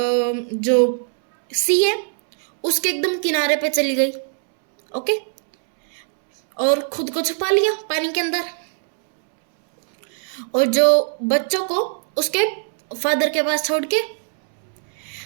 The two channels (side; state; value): left; silent; 65 dB below the other